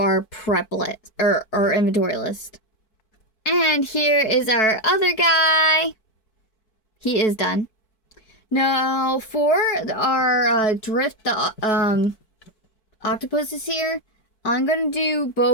prep list, or our inventory list. And here is our other guy. He is done. Now, for our drift octopuses here, I'm going to do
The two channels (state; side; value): late; right; 4.6 ms